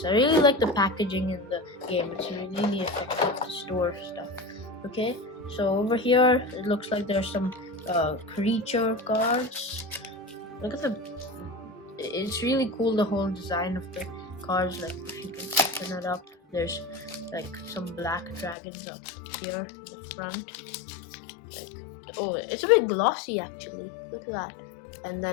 I really like the packaging in the game. It's really effective to store stuff. Okay, so over here it looks like there's some creature cards. Look at it's really cool, the whole design of the cards. Like if you can open it up, there's like some black dragons up here in the front. Oh, it's a bit glossy actually. Look at that. And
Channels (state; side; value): drops out; right; at 18.6 s